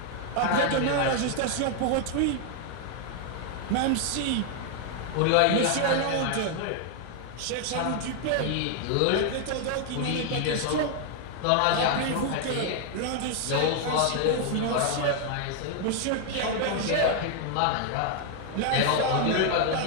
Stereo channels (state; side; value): different; both; correlation 0.00